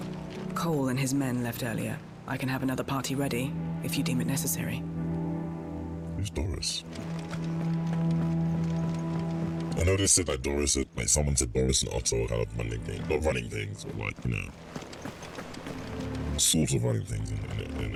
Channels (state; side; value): identical; both; correlation 1.00